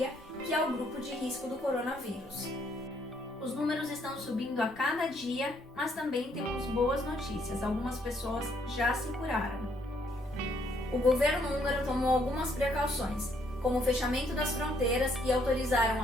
que é o grupo de risco do coronavírus. Os números estão subindo a cada dia, mas também temos boas notícias. Algumas pessoas já se curaram. O governo húngaro tomou algumas precauções, como o fechamento das fronteiras e autorizaram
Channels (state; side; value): noise; right; rumble, 26 dB below the sound